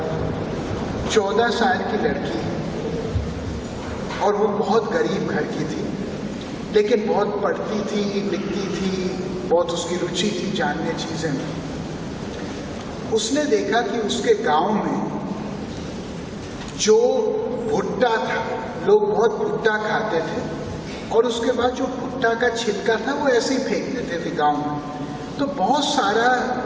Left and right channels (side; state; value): both; identical; correlation 1.00